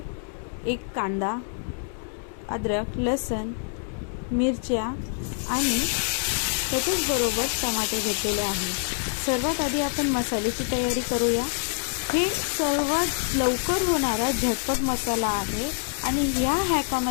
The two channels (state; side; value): silent; right; 61 dB below the other